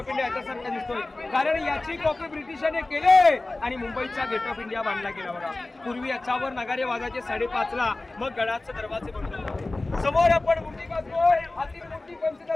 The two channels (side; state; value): right; quieter; 3.0 dB